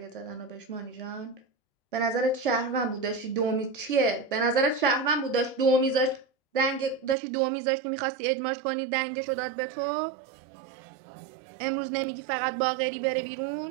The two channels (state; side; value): drops out; left; at 7.2 s